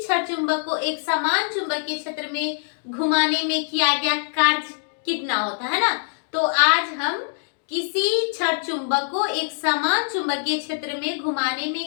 छड़ चुंबक को एक समान चुंबकीय क्षेत्र में घुमाने में किया गया कार्य कितना होता है ना। तो आज हम किसी छड़ चुंबक को एक समान चुंबकीय क्षेत्र में घुमाने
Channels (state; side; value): silent; right; digital silence